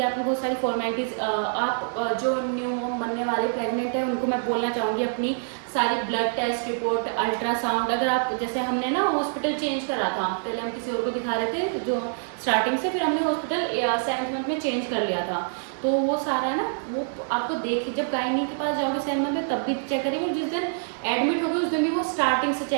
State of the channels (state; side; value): silent; left; digital silence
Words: आपने बहुत सारी फॉर्मेलिटीज़। आप जो न्यू बनने वाले प्रेग्नेंट है उनको मैं बोलना चाहूँगी, अपनी सारी ब्लड टेस्ट रिपोर्ट, अल्ट्रासाउंड, अगर आप जैसे हमने ना हॉस्पिटल चेंज करा था, पहले हम किसी और को दिखा रहे थे जो स्टार्टिंग से, फिर हमने हॉस्पिटल 7th मंथ में चेंज कर लिया था। तो वो सारा है ना, वो आपको देख, जब गायनी के पास जाओगे 7th मंथ में तब भी चेक करेंगे, जिस दिन एडमिट होगे उस दिन भी वो स्टार्टिंग से